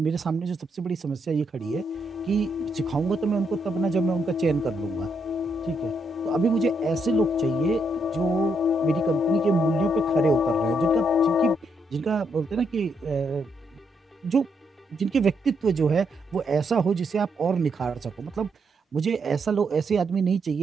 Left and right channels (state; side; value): normal; both; correlation 0.78